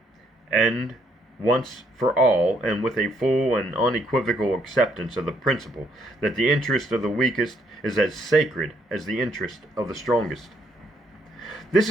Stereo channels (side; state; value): both; normal; correlation 0.71